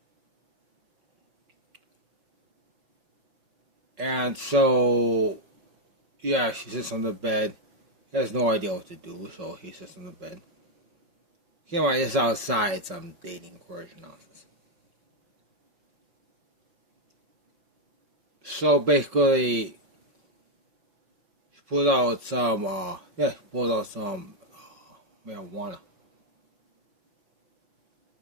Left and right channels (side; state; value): left; late; 5.3 ms